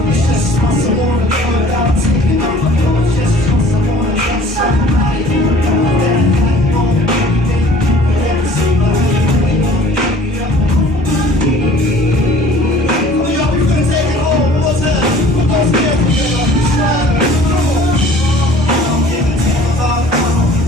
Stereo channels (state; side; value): normal; both; correlation 0.50